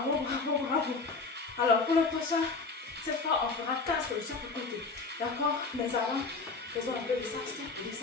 Alors pour le prochain, cette fois, on fera 4 de chaque côté. D'accord? Mais avant, faisons un peu de ça,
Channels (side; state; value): right; quieter; 4.1 dB